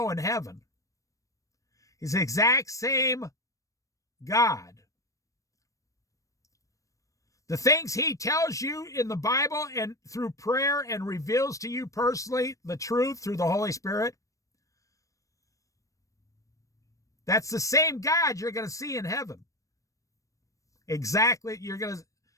in heaven. He's the exact same God. The things he tells you in the Bible and through prayer and reveals to you personally the truth through the Holy Spirit, That's the same God you're going to see in heaven. Exactly.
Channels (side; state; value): right; late; 0.16 ms